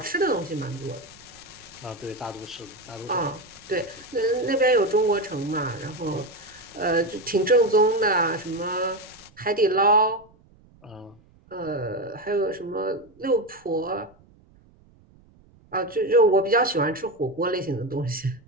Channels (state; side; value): noise; right; rumble, 28 dB below the sound